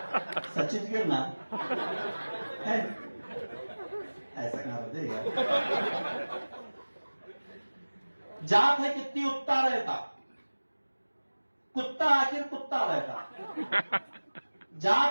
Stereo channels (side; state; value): both; inverted; correlation -1.00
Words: सचित गिरना है, ऐसा क्या होते यार? जात है कितनी उत्ता रहता, कुत्ता आखिर कुत्ता रहता।